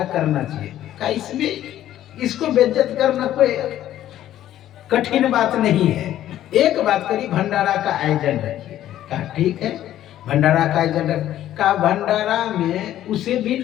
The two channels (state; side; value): quieter; right; 12.5 dB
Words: करना चाहिए। कहा इसमें इसको बेइज्जत करना कोई कठिन बात नहीं है, एक बात करी, भंडारा का आयोजन रखिए। कहा ठीक है, भंडारा का आयोजन रख। कहा भंडारा में उसे भी